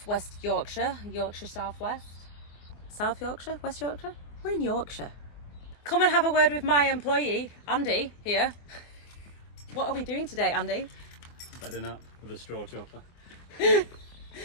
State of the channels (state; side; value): late; right; 24 ms